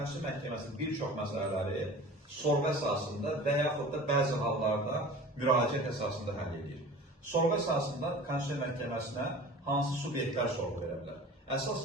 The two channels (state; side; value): normal; both; correlation 0.40